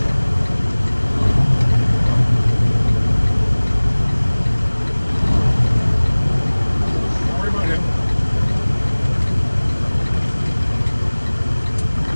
Don't worry about him.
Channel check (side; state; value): both; inverted; correlation -1.00